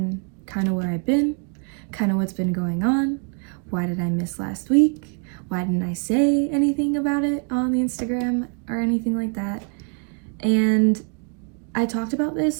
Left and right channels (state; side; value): quieter; left; 39.5 dB